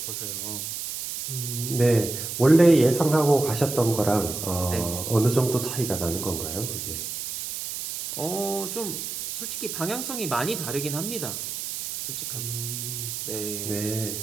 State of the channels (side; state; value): right; noise; hiss, 6 dB below the sound